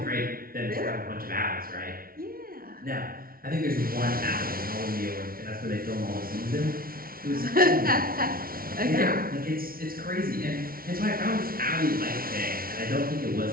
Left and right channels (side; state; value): left; late; 0.43 ms